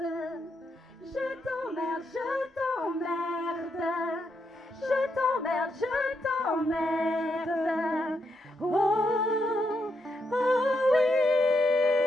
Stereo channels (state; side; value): normal; both; correlation 0.80